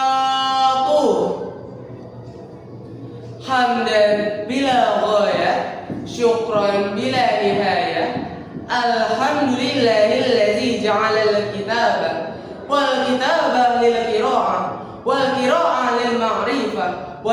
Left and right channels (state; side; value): identical; both; correlation 1.00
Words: Hamdan bila ghaya, syukran bila nihaya. Alhamdulillahilladzi ja'ala al-kitaba wal kitaba lil qira'ah wal qira'ah lil ma'rifah